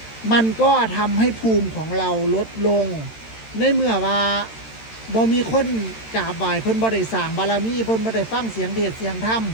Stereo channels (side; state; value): right; late; 13 ms